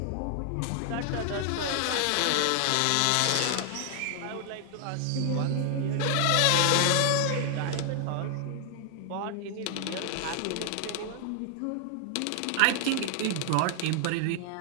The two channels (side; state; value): both; different; correlation 0.00